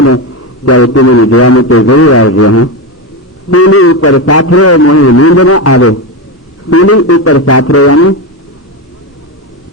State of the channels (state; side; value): normal; both; correlation 0.14